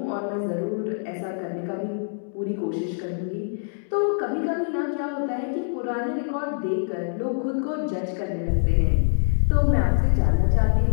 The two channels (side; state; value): right; silent; digital silence